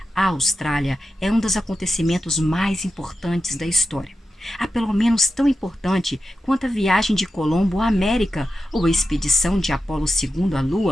à Austrália é um dos acontecimentos mais importantes da história. a pelo menos tão importante quanto a viagem de Colombo à América ou a expedição de Apolo II à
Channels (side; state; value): both; normal; correlation 0.91